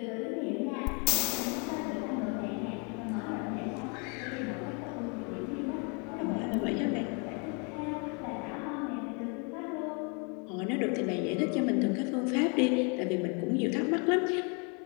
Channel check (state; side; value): quieter; right; 35.5 dB